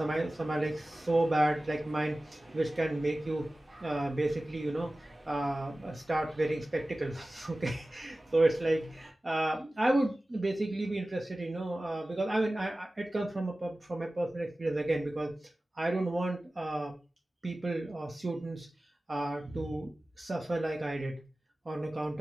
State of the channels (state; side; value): normal; both; correlation 0.97